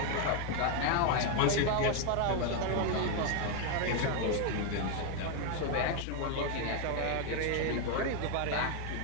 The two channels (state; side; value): different; both; correlation 0.01